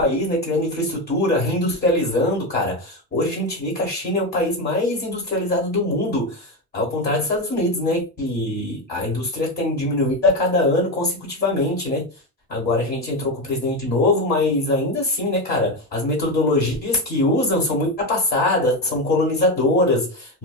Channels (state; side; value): normal; both; correlation 0.14